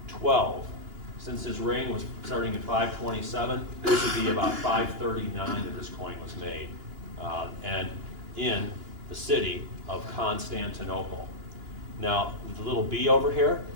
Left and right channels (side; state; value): left; late; 2.9 ms